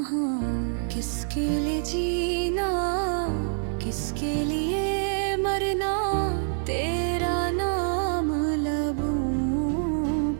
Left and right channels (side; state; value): left; silent; 55 dB below the other